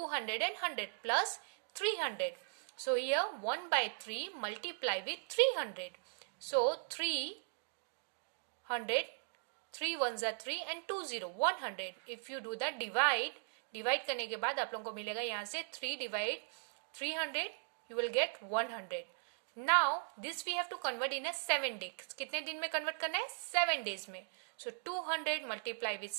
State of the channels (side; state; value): left; silent; digital silence